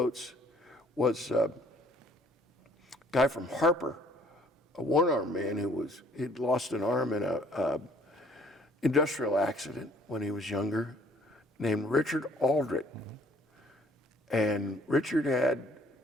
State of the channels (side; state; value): both; normal; correlation 0.59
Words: was a guy from Harper, a one-armed man he'd lost an arm in a industrial accident when he was younger, named Richard Aldrich. And Richard had